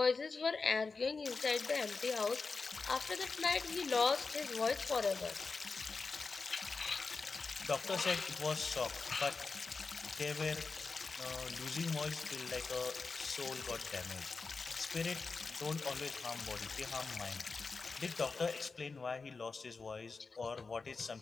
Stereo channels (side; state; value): right; quieter; 4.4 dB